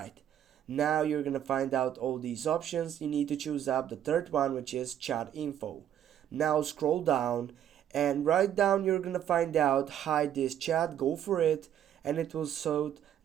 Now you're gonna find out all these options. You need to choose up the third one, which is chat info. Now scroll down, and right down you're gonna find out hide this chat. Go for it, and it will show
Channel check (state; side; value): quieter; left; 10.4 dB